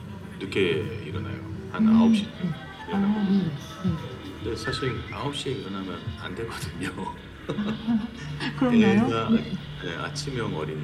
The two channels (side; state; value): both; identical; correlation 1.00